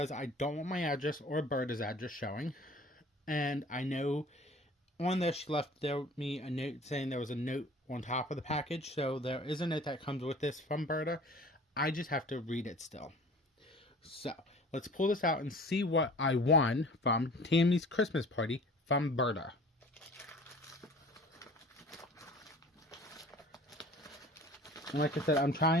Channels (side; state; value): both; normal; correlation 0.46